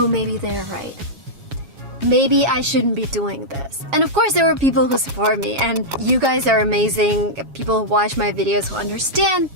maybe they're right. Maybe I shouldn't be doing this. And of course there were people who support me, and you guys are amazing. People who watch my videos who understand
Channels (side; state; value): left; late; 7.3 ms